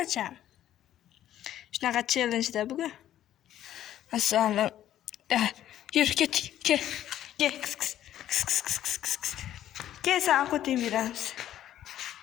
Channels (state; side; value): quieter; right; 12.0 dB